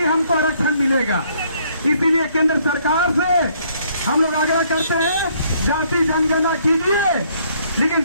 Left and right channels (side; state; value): both; inverted; correlation -0.66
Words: हमको आरक्षण मिलेगा। इसीलिए केंद्र सरकार से हम लोग आग्रह करते हैं, जाति जनगणना कीजिए, लेकिन